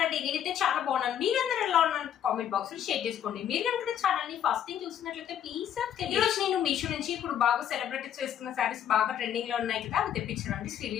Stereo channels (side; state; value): right; quieter; 9.8 dB